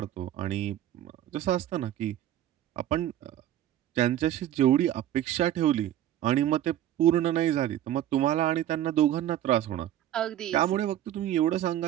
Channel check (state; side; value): quieter; left; 12.1 dB